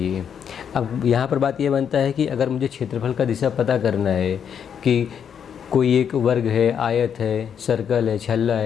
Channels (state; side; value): quieter; right; 8.0 dB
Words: अब यहाँ पर बात ये बनता है कि अगर मुझे क्षेत्रफल का दिशा पता करना है कि कोई एक वर्ग है, आयत है, सर्कल है, छल्ला